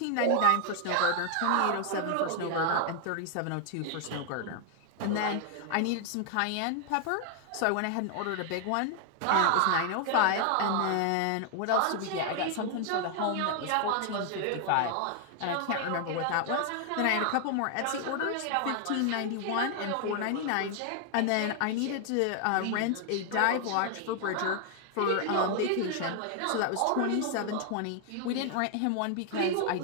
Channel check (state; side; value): different; both; correlation 0.00